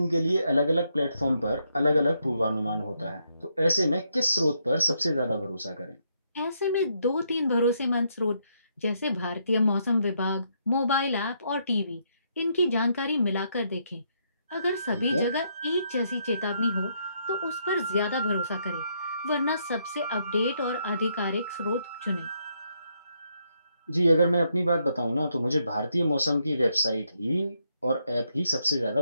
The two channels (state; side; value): inverted; both; correlation -0.76